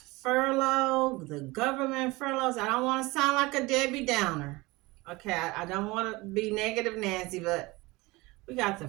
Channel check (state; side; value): quieter; left; 22.3 dB